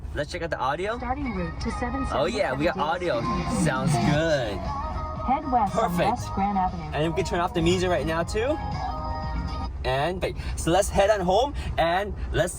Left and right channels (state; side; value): identical; both; correlation 1.00